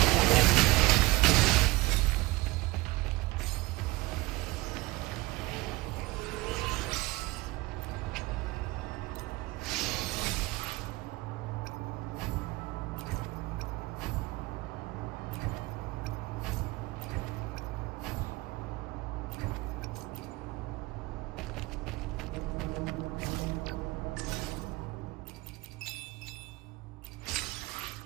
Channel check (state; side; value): quieter; left; 21.1 dB